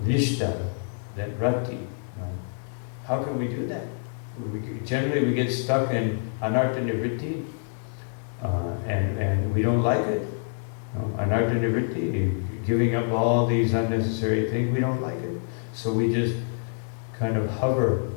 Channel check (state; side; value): silent; right; digital silence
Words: nishta, then rati. How can we do that? Generally, we get stuck in anartha nivritti, and we don't like it. Anartha nivritti, giving up all these unnecessary things, we don't like it. So we just kind of hover